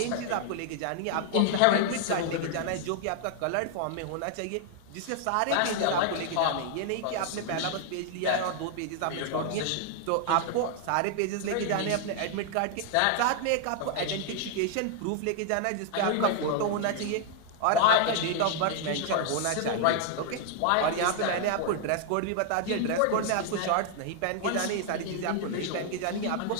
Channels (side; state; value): both; different; correlation 0.00